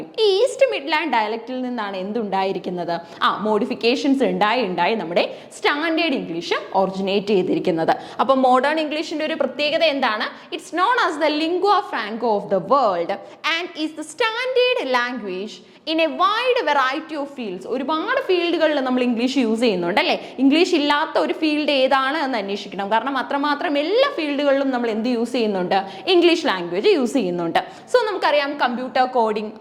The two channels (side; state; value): both; identical; correlation 1.00